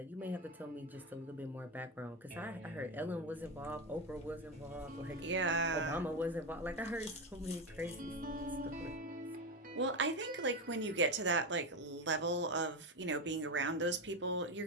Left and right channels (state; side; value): normal; both; correlation 0.14